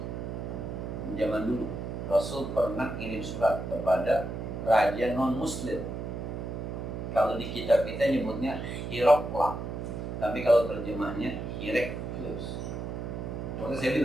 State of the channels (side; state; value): right; noise; hum, 5 dB below the sound